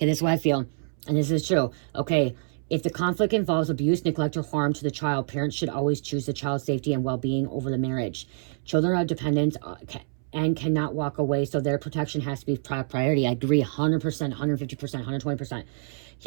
this is what I feel. And this is true. Okay, if the conflict involves abuse, neglect, or harm to the child, parents should always choose the child's safety and well-being over the marriage. Children are dependent and cannot walk away, so their protection has to be priority. I agree 100%, 150%, 120%.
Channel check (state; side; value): silent; left; 61 dB below the other